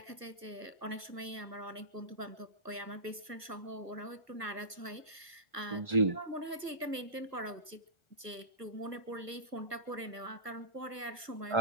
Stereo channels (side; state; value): left; late; 1.4 ms